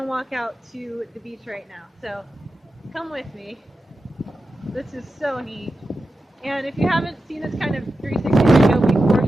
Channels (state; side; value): normal; both; correlation 0.91